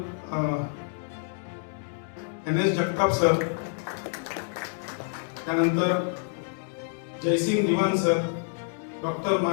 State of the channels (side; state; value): right; silent; 60 dB below the other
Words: NS जगताप सर, त्यानंतर Jaysing Diwan sir, doctor